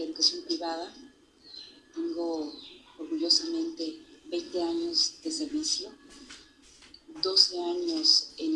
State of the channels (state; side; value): identical; both; correlation 1.00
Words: educación privada. Tengo orgullosamente 20 años de servicio, 12 años